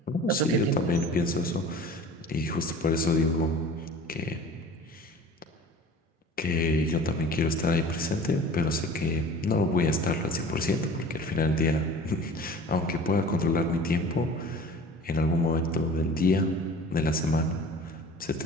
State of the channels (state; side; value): normal; both; correlation 0.42